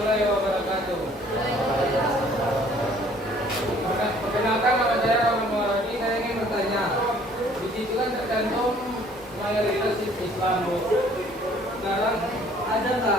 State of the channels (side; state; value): both; normal; correlation 0.57